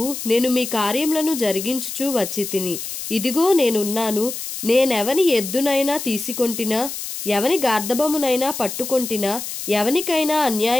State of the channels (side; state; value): left; noise; hiss, 7 dB below the sound